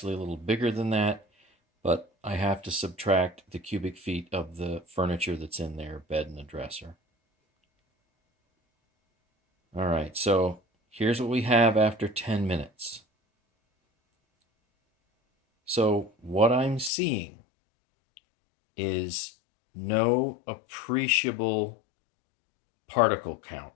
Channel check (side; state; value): right; drops out; at 16.9 s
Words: a little bigger than that, but I have to subtract the cubic feet of the furniture that's in there, bed and a dresser. All right, so here's what we have after 10 minutes. So what I'm seeing is no appreciable particle count